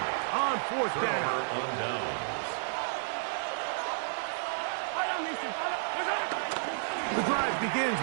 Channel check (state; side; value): silent; left; 57 dB below the other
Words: on 4th down. The drive begins